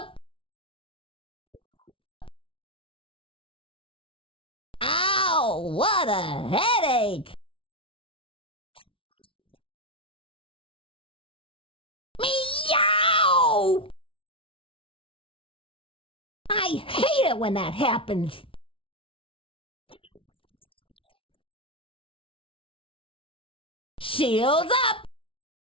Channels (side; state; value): right; late; 0.26 ms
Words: Руки вверх. Ow, what a headache! Как болит голова. Meow! I hate it when that happens. Ненавижу, когда такое происходит. Shields up!